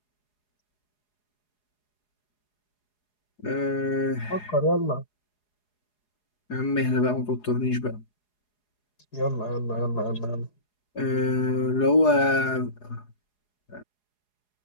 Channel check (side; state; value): right; late; 4.8 ms